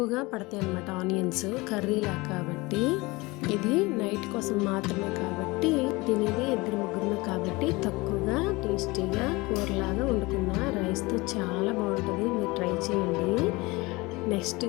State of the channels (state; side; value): quieter; right; 23.2 dB